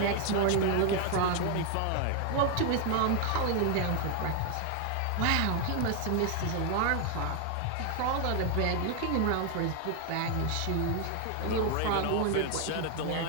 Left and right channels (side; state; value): both; different; correlation 0.00